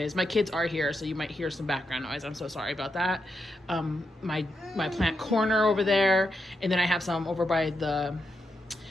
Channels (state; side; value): normal; both; correlation 0.84